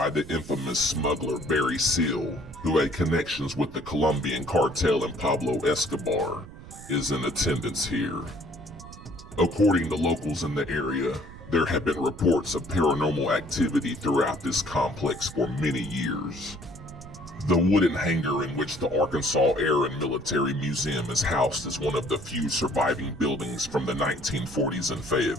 the infamous smuggler Barry Seal, who had connections with the Colombian cartel and Pablo Escobar, is in attendance here. According to locals in the area, there have been reports of paranormal activity throughout this complex for many years. The wooden hangar in which the Arkansas Air and Military Museum is housed is one of the few surviving buildings from the 1940s in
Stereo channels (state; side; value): noise; right; rumble, 16 dB below the sound